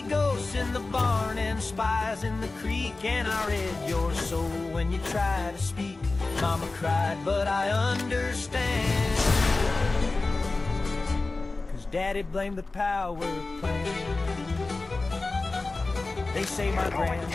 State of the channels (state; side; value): quieter; right; 3.5 dB